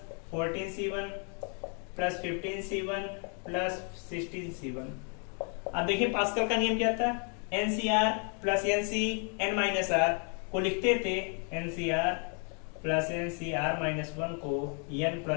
14C1 plus 15C1 plus 16C1। अब देखिए पास्कल का नियम क्या था, NCR plus NC n minus r को लिखते थे NCR प्लस NCR माइनस 1 को n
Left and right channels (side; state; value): right; quieter; 39.8 dB